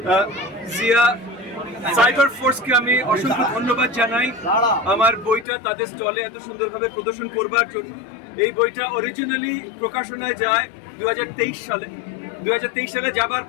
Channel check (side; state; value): right; drops out; at 5.5 s